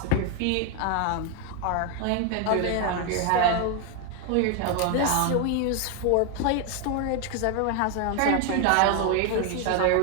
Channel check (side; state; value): both; different; correlation 0.01